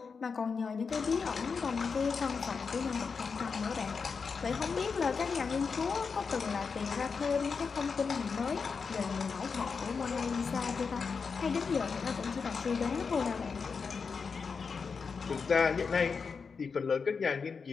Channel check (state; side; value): quieter; right; 5.3 dB